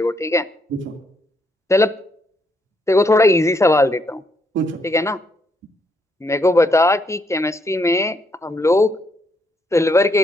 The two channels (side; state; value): both; normal; correlation 0.74